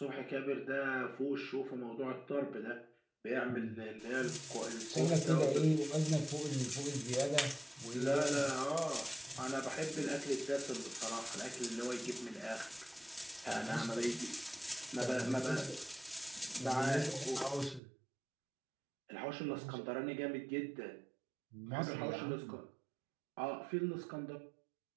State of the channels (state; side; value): drops out; left; at 17.8 s